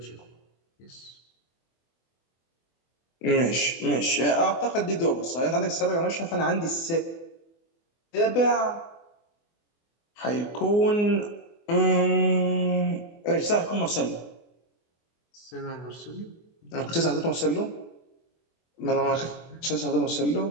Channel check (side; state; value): right; late; 24 ms